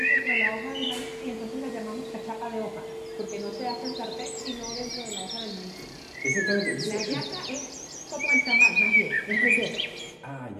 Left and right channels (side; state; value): both; identical; correlation 1.00